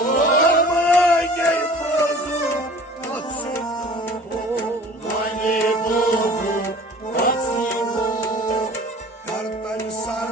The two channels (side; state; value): both; normal; correlation 0.45